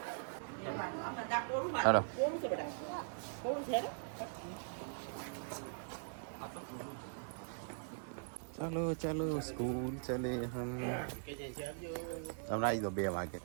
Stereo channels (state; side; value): silent; left; digital silence